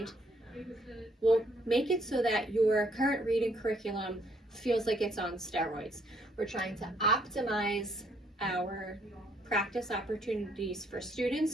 will make it so that your current reading curriculum feels like it's on steroids. We're trying to optimize our practice opportunities for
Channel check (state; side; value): normal; both; correlation 0.68